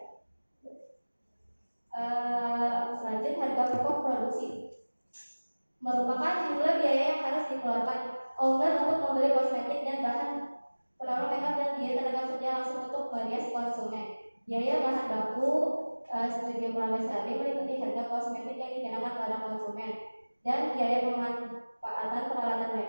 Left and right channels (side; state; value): both; inverted; correlation -1.00